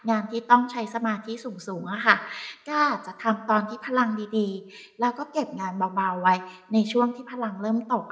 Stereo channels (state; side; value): identical; both; correlation 1.00